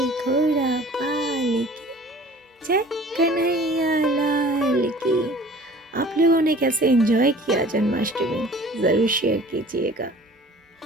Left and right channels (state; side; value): normal; both; correlation 0.47